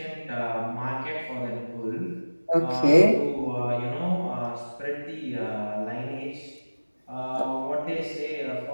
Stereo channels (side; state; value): both; inverted; correlation -1.00